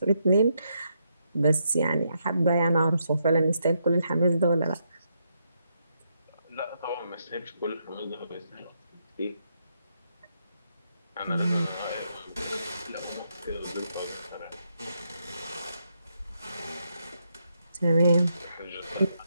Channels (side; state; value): both; inverted; correlation -0.79